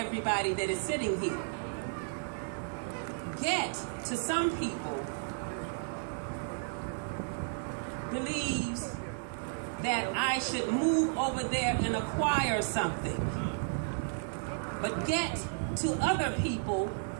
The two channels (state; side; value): silent; left; 56 dB below the other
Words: that is sitting here. Get, to some people, believes that I should move over there and acquire something. But get to other people